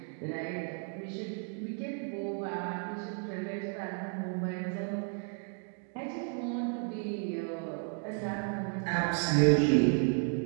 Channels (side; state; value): left; quieter; 39.0 dB